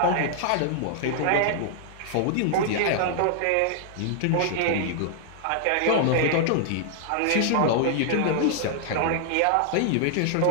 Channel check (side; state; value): both; different; correlation -0.01